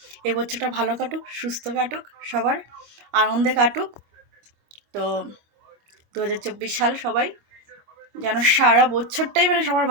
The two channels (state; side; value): late; left; 26 ms